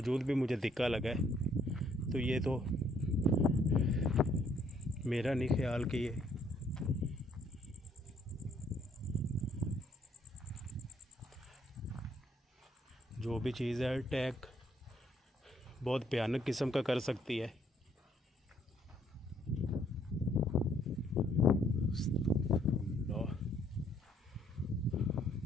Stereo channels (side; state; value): both; normal; correlation 0.67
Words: भी मुझे धिक्का लगा है। तो ये तो मेरा नहीं ख्याल कि ये जो भी चीज़ है अटैक बहुत भयानक किस्म का कर सकती है।